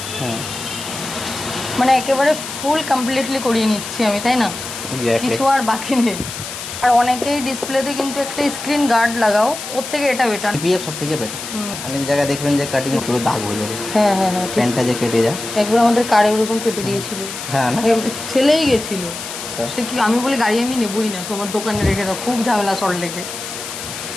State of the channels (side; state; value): left; noise; hiss, 9 dB below the sound